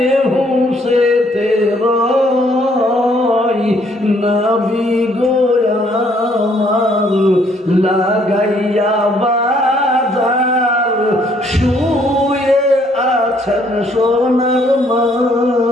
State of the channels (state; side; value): normal; both; correlation 0.66